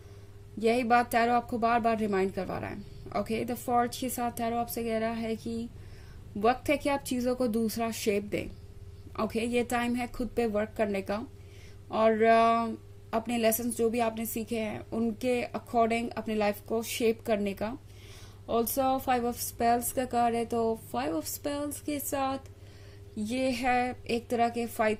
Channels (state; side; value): identical; both; correlation 1.00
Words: यही बात टैरो आपको बार बार रिमाइंड करवा रहा है। ओके, द फॉर्ज के साथ टैरो आपसे कह रहा है कि वक्त है कि आप चीजों को दूसरा शेप दें। ओके, ये टाइम है खुद पे वर्क करने का, और अपने लेसन्स जो भी आपने सीखे हैं उनके अकॉर्डिंग अपनी लाइफ को शेप करने का। ऑल्सो 5 ऑफ स्पेल्स का कार्ड है, तो 5 ऑफ स्पेल्स के साथ ये है एक तरह के